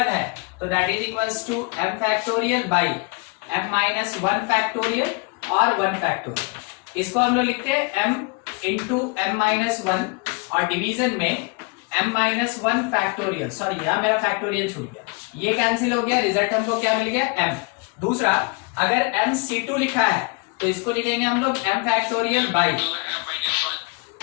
है तो that is equals to m factorial by m minus 1 factorial और 1 फैक्टोरियल। इसको हम लोग लिखते हैं m इंटू m माइनस 1 और डिवीजन में m माइनस 1 फैक्टोरियल। सॉरी यहाँ मेरा फैक्टोरियल छूट गया, ये कैंसिल हो गया, रिजल्ट हमको क्या मिल गया m। दूसरा, अगर m c2 लिखा है तो इसको लिखेंगे हम लोग m फैक्टोरियल बाई,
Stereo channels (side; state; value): right; quieter; 30.2 dB